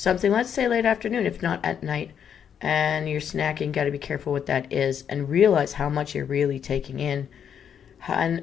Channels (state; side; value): quieter; right; 8.2 dB